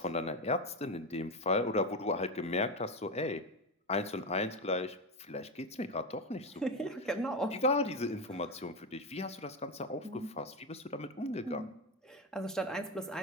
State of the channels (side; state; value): both; normal; correlation 0.15